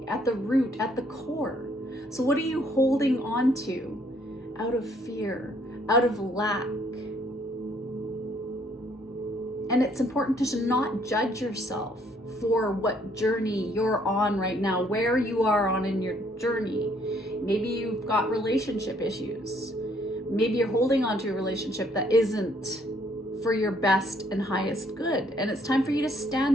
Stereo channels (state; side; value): normal; both; correlation 0.65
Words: at the root, at the core. So what are you holding on to out of fear, out of lack? And it's important to not judge yourself for what journey you're on right now, where you are on in your journey. Maybe you've got relationship issues. Maybe you're holding on to a relationship that isn't for your best and highest good. And it's time for you to